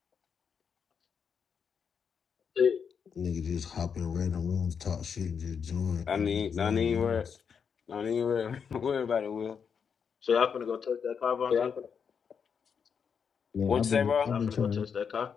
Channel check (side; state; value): right; quieter; 6.7 dB